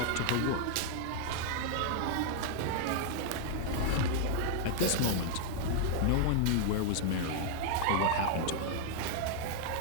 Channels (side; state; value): both; different; correlation 0.00